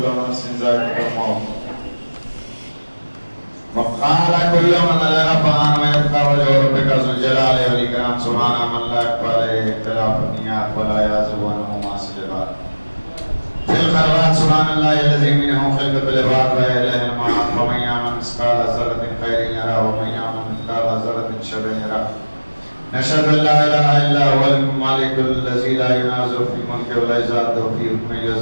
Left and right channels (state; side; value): inverted; both; correlation -1.00